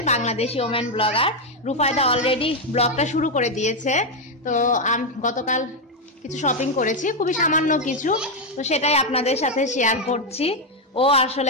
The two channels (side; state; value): both; normal; correlation 0.04